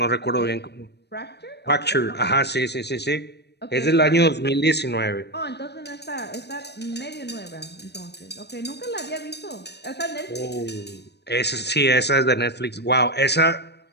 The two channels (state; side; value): late; right; 0.49 ms